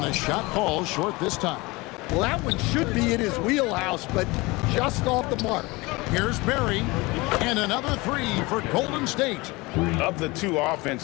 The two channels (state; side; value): quieter; right; 23.3 dB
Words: the shot falls short this time. Well, that one should be in his wheelhouse, but just off the mark. Here's Barry, and another 3 for Golden State. Of the two